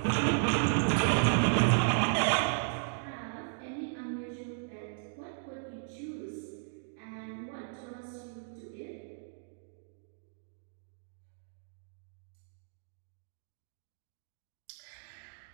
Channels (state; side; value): silent; left; digital silence